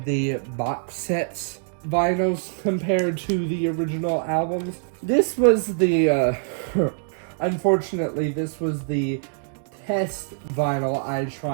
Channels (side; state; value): left; silent; digital silence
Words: the box sets vinyls compared to the original albums. This was the, unfortunately, this was the test vinyl I